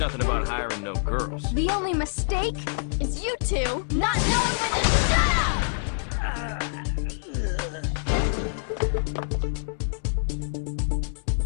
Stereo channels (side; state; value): right; silent; digital silence